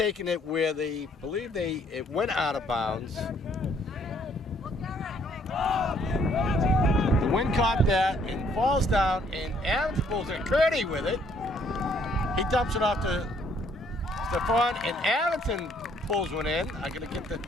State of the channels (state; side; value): normal; both; correlation 0.65